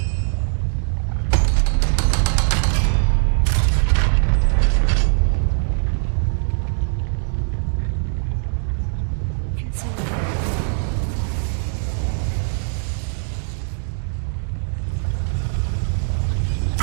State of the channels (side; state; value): left; silent; 65 dB below the other